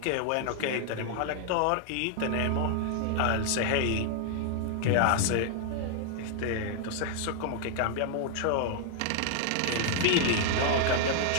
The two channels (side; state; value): both; different; correlation 0.00